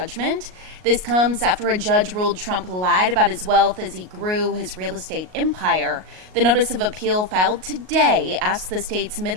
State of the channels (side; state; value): left; late; 38 ms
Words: This comes after a judge ruled Trump lied about his wealth as he grew his real estate empire. The notice of appeal filed today asked the state's